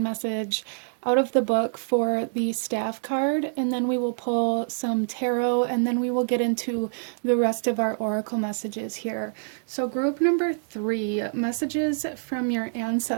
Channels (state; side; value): silent; left; digital silence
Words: message out of the book for the Staff card, and then we will pull some tarot, and then we will get into the rest of our oracle messages here. So group number 3, messages from your